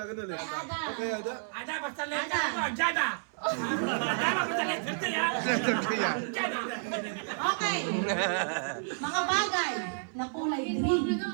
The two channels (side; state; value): left; silent; 57 dB below the other